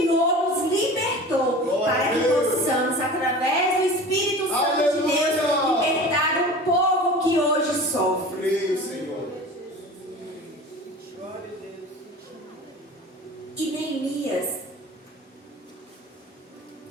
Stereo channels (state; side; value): normal; both; correlation 0.37